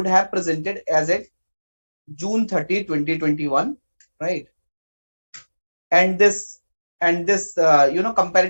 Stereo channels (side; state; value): both; inverted; correlation -1.00